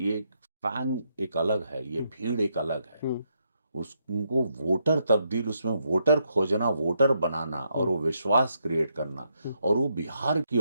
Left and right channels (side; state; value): both; inverted; correlation -0.78